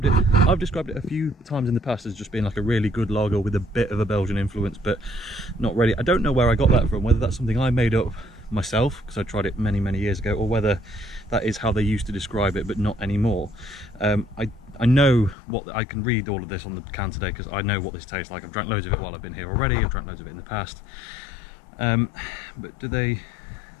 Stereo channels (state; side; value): drops out; right; at 15.4 s